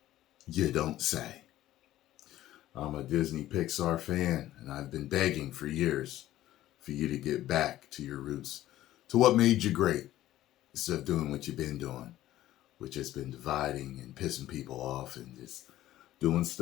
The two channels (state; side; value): quieter; right; 14.3 dB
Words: You don't say. I'm a Disney Pixar fan, and I've been begging for years for you to get back to your roots, to what made you great, instead of doing what you've been doing, which has been dividing and pissing people off and just doing